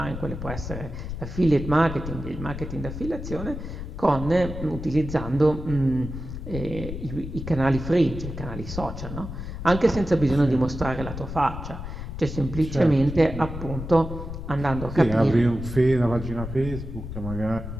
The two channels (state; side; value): noise; left; rumble, 8 dB below the sound